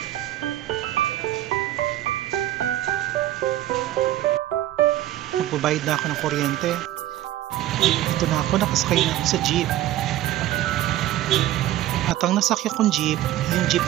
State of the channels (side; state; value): left; quieter; 14.0 dB